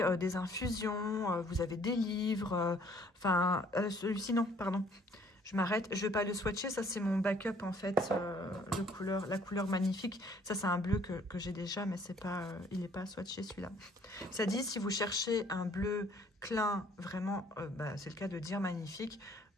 des infusions, vous avez des livres, celui-ci non, pardon, je m'arrête, je vais pas le swatcher, ça c'est mon backup en fait, la couleur magnifique, ça c'est un bleu que j'ai déjà, mais c'est pas, il n'est pas swatché celui-là. Ça dit, si vous cherchez un bleu clin, vraiment, c'est le cas de dire magnifique,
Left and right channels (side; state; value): both; normal; correlation 0.60